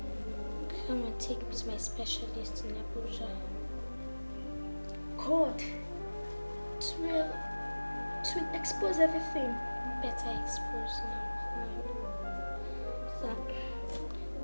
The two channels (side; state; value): both; inverted; correlation -1.00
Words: come and take me to my specialist in Abuja. God, it will expose everything. Better expose now. So,